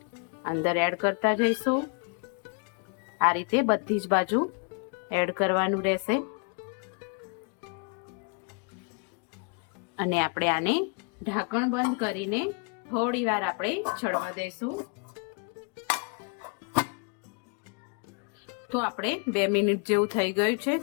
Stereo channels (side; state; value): right; quieter; 38.4 dB